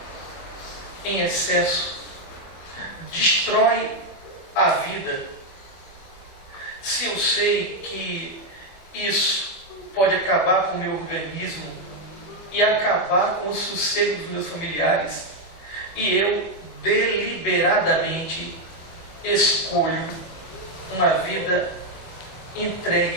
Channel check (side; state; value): right; late; 24 ms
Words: em excesso destrói a vida, se eu sei que isso pode acabar com o meu organismo e acabar com o sossego dos meus familiares, e eu deliberadamente escolho uma vida